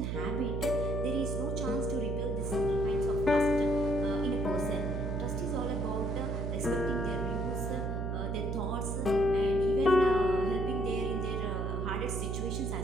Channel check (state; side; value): noise; right; hum, 1 dB below the sound